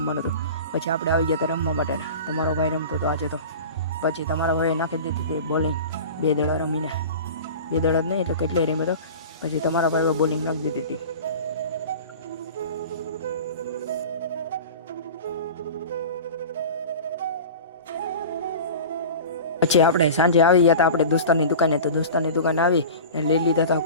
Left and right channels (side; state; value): both; inverted; correlation -0.35